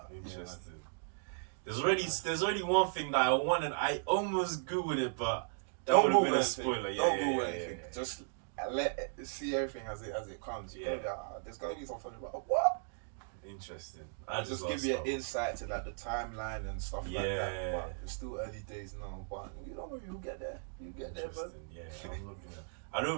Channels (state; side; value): silent; left; digital silence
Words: interesting. There's already one thing that I wanted. I almost googled it, but that would have been a spoiler. Don't Google anything. Just see everything as it comes. There's gotta be something about what. Interesting. Just give you an insight to like the timeline and stuff like that. But it's still early days now. But you'll get there. You get there, bro. Yeah, I'm looking at. I